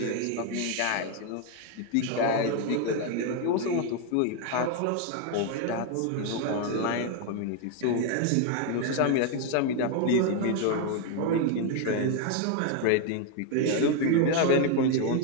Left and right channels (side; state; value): both; different; correlation 0.01